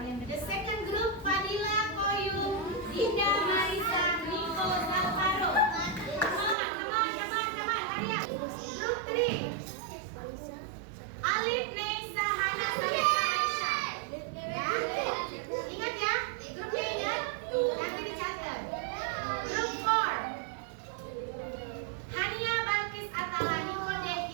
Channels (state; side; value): drops out; left; at 6.6 s